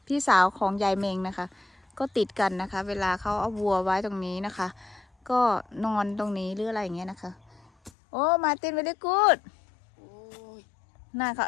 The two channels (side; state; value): right; drops out; at 7.9 s